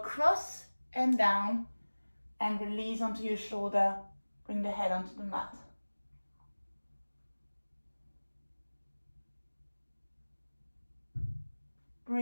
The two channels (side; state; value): both; inverted; correlation -1.00